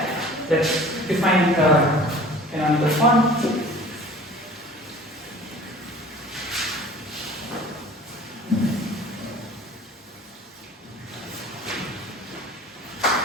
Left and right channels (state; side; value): normal; both; correlation 0.45